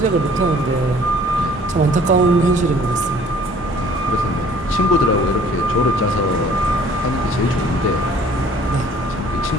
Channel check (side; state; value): both; normal; correlation 0.54